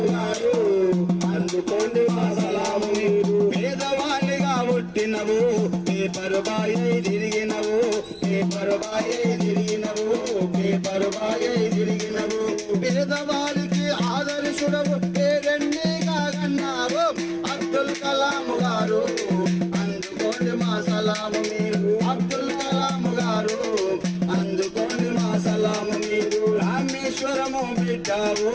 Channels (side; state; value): both; identical; correlation 1.00